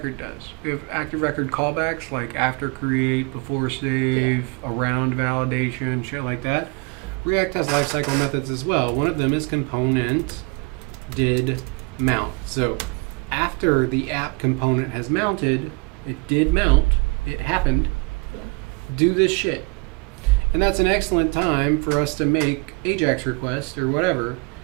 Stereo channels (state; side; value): quieter; left; 30.2 dB